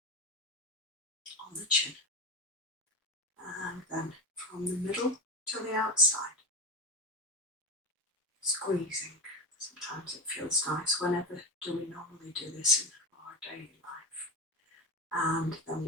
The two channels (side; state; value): both; normal; correlation 0.20